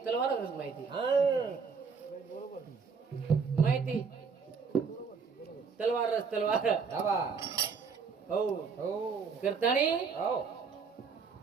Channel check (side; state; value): left; quieter; 5.5 dB